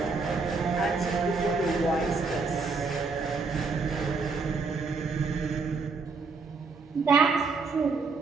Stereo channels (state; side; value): quieter; left; 4.4 dB